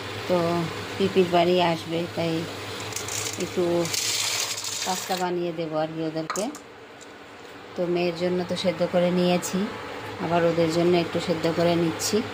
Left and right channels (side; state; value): both; identical; correlation 1.00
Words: তো পিপির বাড়ি আসবে, তাই একটু পাস্তা বানিয়ে দেবো আর কি ওদেরকে। তো মেয়ের জন্য তো সেদ্ধ করে নিয়েছি, আবার ওদের জন্য একটু সেদ্ধ করে নিচ্ছি,